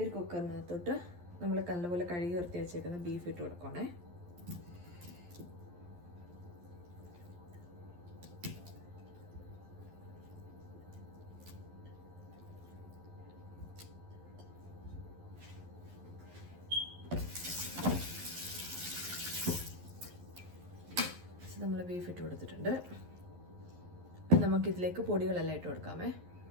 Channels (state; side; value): late; left; 11 ms